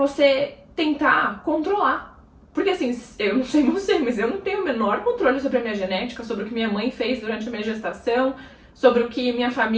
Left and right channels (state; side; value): identical; both; correlation 1.00